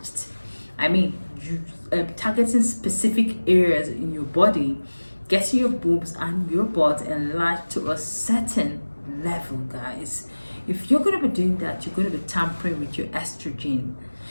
You targeting specific areas in your body, getting your boobs and your butt enlarged to a certain level, guys. If you're going to be doing that, you're going to be tampering with your estrogen.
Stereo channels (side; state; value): both; inverted; correlation -1.00